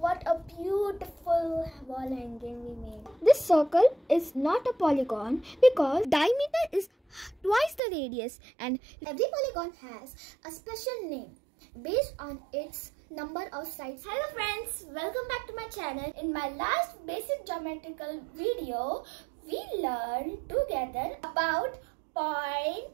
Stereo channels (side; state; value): left; drops out; at 7.8 s